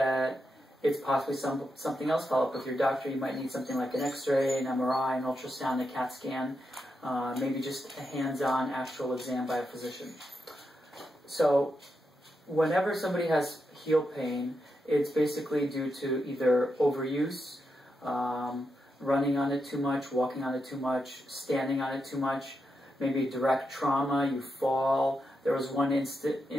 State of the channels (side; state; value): both; normal; correlation 0.85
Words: it's possibly something else, follow up with your doctor. You might need something like an X-ray, an MRI, an ultrasound, a CAT scan, maybe just a hands-on actual exam by a physician. So whenever somebody has heel pain, it's basically due to either overuse, running on it too much, walking on it too much, standing on it too much, maybe direct trauma, you fall. There was one